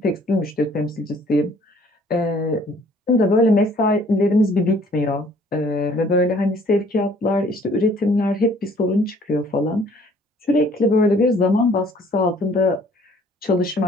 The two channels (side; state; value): both; normal; correlation 0.58